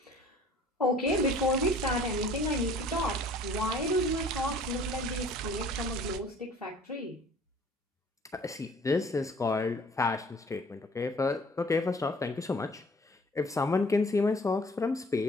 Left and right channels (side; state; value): both; normal; correlation 0.52